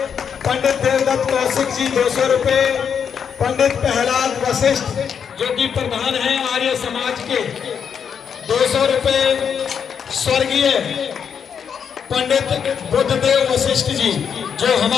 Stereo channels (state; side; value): quieter; right; 7.3 dB